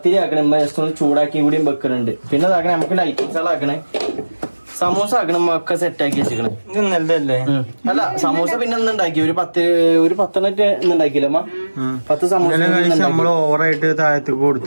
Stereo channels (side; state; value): both; inverted; correlation -1.00